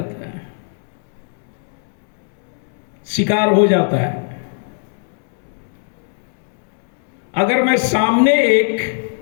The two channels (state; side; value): silent; right; 66 dB below the other